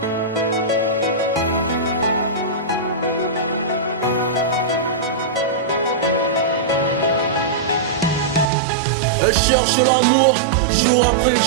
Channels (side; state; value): left; drops out; at 8.5 s